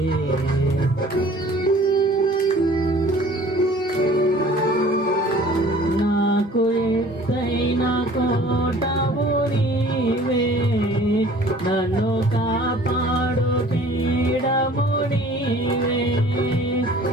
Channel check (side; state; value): both; normal; correlation 0.50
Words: నాకు ఎత్తైన కోటవు నీవే, నన్ను కాపాడు పీడము నీవే,